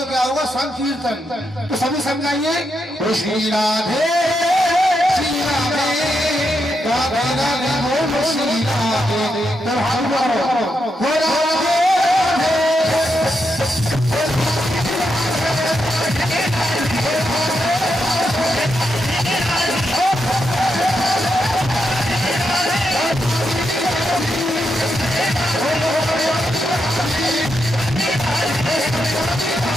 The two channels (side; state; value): both; normal; correlation 0.83